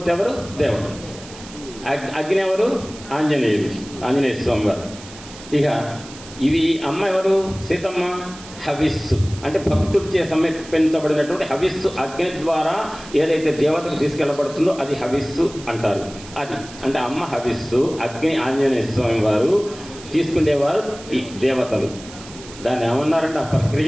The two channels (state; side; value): noise; right; hiss, 17 dB below the sound